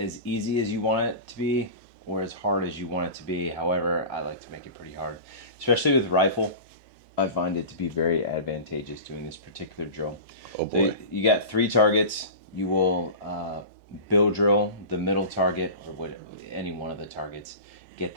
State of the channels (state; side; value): inverted; both; correlation -0.32